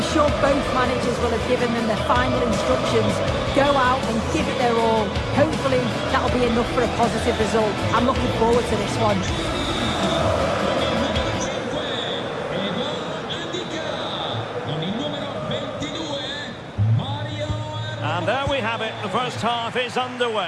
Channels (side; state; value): both; identical; correlation 1.00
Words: sure both managers will have given them the final instructions. Go out and give it their all. Hopefully that'll be enough for a positive result. I'm looking forward to this one. And there we have it, the first half is